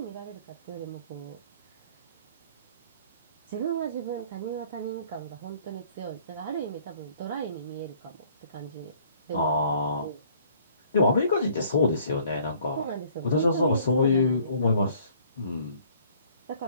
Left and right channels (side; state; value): both; inverted; correlation -0.57